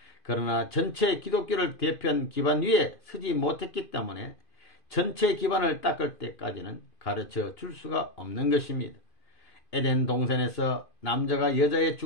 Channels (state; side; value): late; right; 2.5 ms